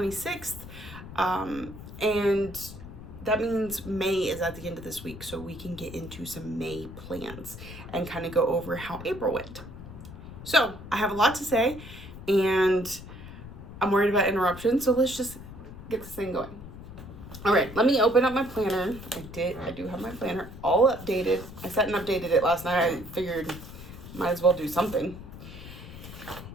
and that means May is at the end of this week, so we can get into some May plans and kind of go over how April went. So I have a lot to say, and I'm worried about interruptions, so let's just get this thing going. All right, let me open up my planner. I do have my planner all updated. I sat and updated it last night. I figured might as well do something.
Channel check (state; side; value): noise; left; rumble, 13 dB below the sound